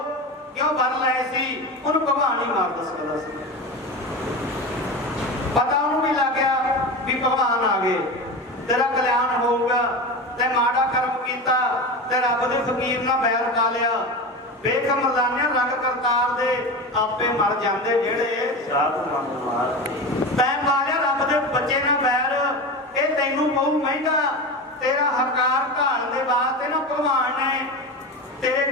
ਕਿਉਂ ਵਰ ਲਏ ਸੀ, ਉਹਨੂੰ ਭਗਵਾਨ ਹੀ ਮਾਰ ਸਕਦਾ ਸੀ। ਪਤਾ ਉਹਨੂੰ ਵੀ ਲੱਗ ਗਿਆ ਵੀ ਭਗਵਾਨ ਆ ਗਏ, ਤੇਰਾ ਕਲਿਆਣ ਹੋਊਗਾ। ਤੇ ਮਾੜਾ ਕਰਮ ਕੀਤਾ ਤੇ ਰੱਬ ਦੇ ਫਕੀਰ ਨਾਲ ਬੈਰ ਪਾ ਲਿਆ। ਵੇਖ ਮਰਦਾਨਿਆਂ ਰੰਗ ਕਰਤਾਰ ਦੇ, ਆਪੇ ਮਰ ਜਾਂਦੇ ਜਿਹੜੇ ਸਾਧ ਮੰਗ ਮਾਰ। ਤੈਂ ਪਾ ਲਿਆ ਰੱਬ ਦੇ ਬੱਚੇ ਨਾਲ ਬੈਰ, ਇਹ ਤੈਨੂੰ ਪਊ ਮਹਿੰਗਾ। ਤੇਰਾ ਹਕਾਰ ਢਾਣ ਦੇ ਵਾਸਤੇ ਨਾ ਭਗਵਾਨ ਨੇ ਤੇਰੇ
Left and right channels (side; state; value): both; normal; correlation 0.25